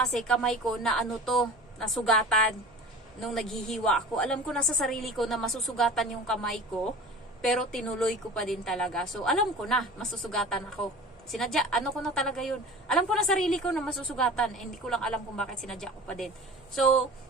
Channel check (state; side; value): normal; both; correlation 0.39